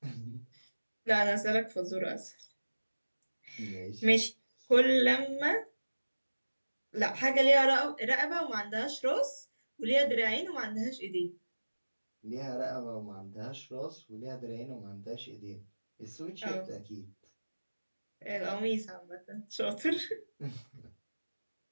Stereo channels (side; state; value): both; inverted; correlation -1.00